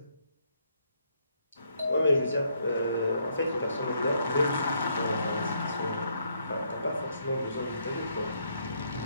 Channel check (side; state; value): both; inverted; correlation -0.73